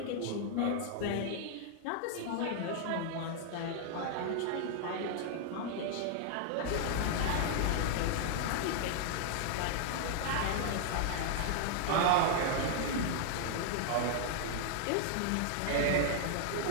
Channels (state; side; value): different; both; correlation -0.01